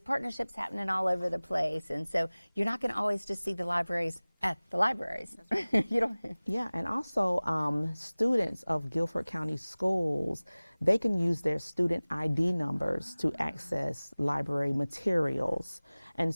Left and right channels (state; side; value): inverted; both; correlation -0.99